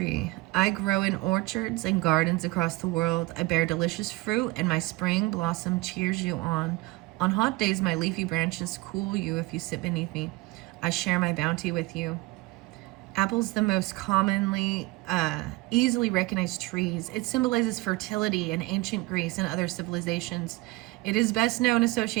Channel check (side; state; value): left; quieter; 21.6 dB